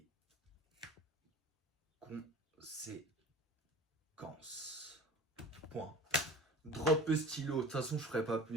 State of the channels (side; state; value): both; normal; correlation 0.40